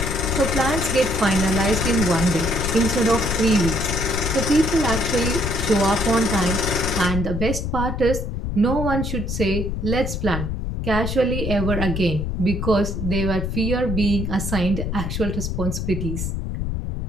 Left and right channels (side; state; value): left; noise; rumble, 3 dB below the sound